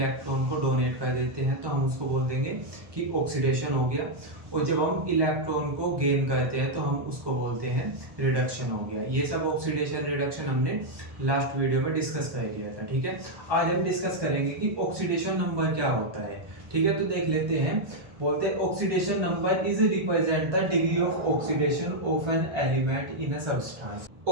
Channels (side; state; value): left; late; 1.2 ms